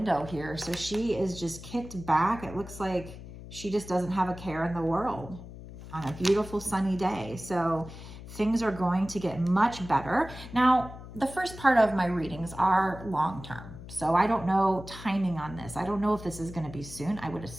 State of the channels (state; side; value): noise; left; hum, 14 dB below the sound